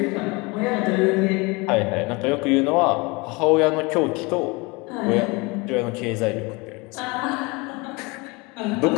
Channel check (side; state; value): right; quieter; 26.1 dB